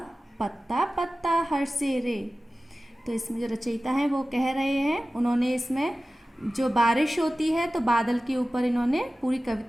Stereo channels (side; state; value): both; normal; correlation 0.96